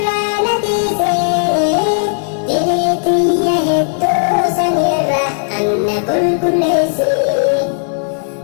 na dhiise diriitiyya hedduu sanirra anna qulqulleessi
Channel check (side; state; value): right; silent; digital silence